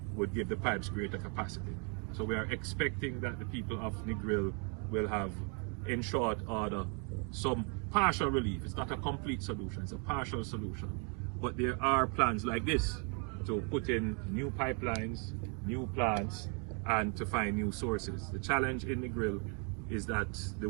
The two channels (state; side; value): quieter; left; 35.1 dB